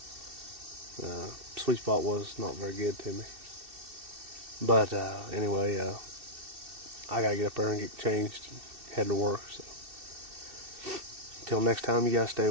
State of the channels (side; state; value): left; late; 2.7 ms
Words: Sweet spot was not very good to me, but anyway, I gotta get up there and get changed and head to work. So until next time, you guys stay